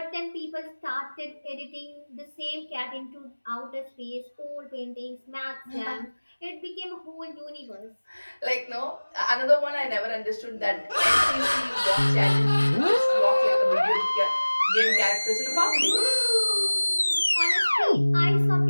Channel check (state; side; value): inverted; both; correlation -1.00